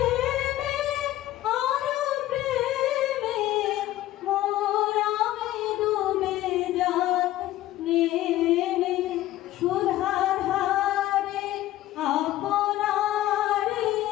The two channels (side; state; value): right; quieter; 14.7 dB